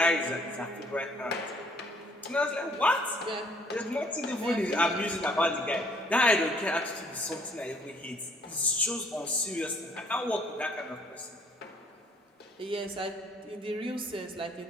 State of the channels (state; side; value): normal; both; correlation 0.61